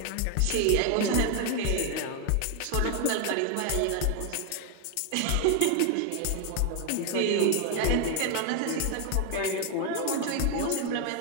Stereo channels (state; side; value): different; both; correlation 0.01